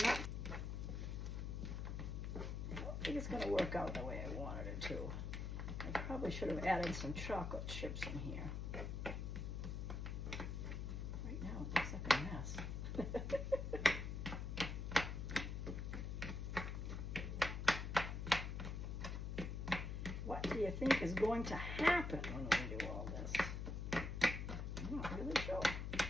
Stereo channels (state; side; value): noise; left; hum, 3 dB below the sound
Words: I don't think it's going to work out the way I wanted it to. I probably should have added some chocolate chips in here. Right now, it looks like a mess. What do you think is going to happen when we do all this? I'm not really sure.